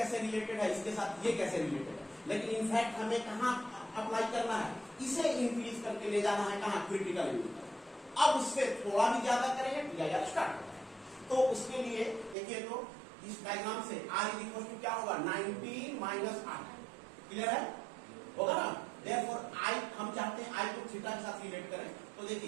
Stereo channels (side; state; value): left; drops out; at 12.4 s